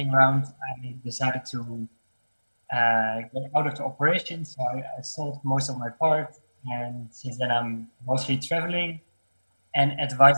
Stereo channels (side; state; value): both; inverted; correlation -1.00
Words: round, I decided to get out of the operation. So I sold most of my part. And since then, I'm mostly traveling and